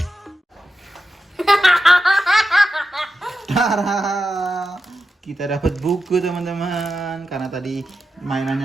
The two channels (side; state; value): both; normal; correlation 0.90